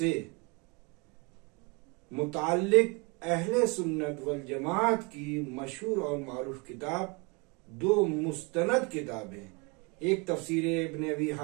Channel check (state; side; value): quieter; left; 30.0 dB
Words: मुताल्लिक अहले सुन्नत वल जमात की मशहूर और मारूफ किताब, दो मुस्तनद किताबें, एक तफसीर इब्न अबी